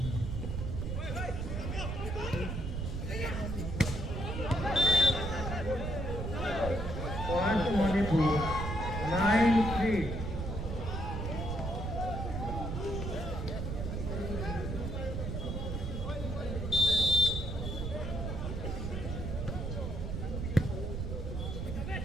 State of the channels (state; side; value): noise; right; rumble, 3 dB below the sound